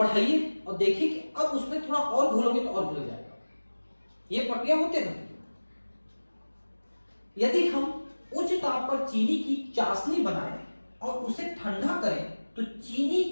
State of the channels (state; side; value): inverted; both; correlation -1.00